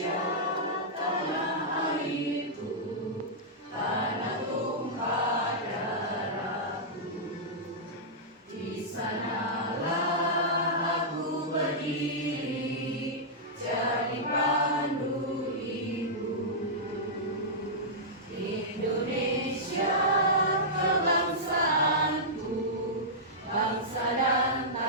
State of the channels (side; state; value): both; normal; correlation -0.12